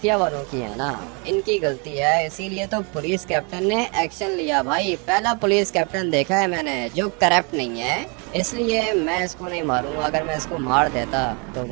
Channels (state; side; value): quieter; left; 33.8 dB